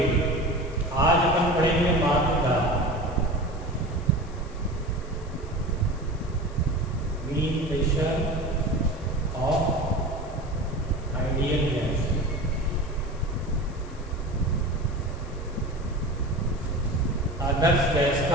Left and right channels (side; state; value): left; noise; hiss, 25 dB below the sound